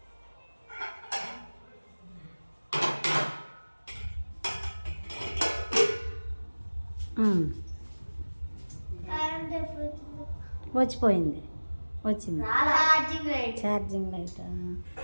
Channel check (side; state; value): both; inverted; correlation -1.00